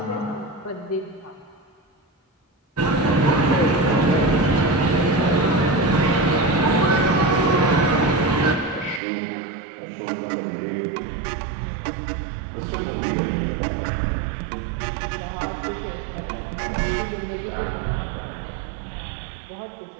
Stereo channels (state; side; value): drops out; left; at 9.0 s